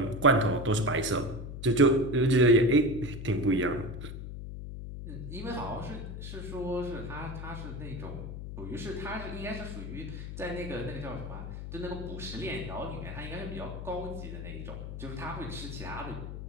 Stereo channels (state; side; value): noise; left; hum, 8 dB below the sound